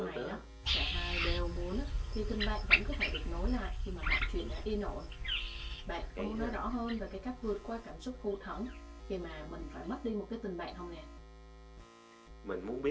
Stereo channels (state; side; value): identical; both; correlation 1.00